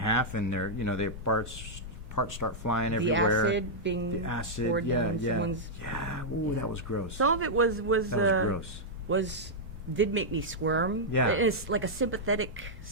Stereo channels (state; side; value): normal; both; correlation -0.07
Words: and their parts start flying everywhere. The acid being poured down someone's... Yeah, ooh, that was gross. Some of it was gross. Did make me squirm. Yeah. It's like a sympathetic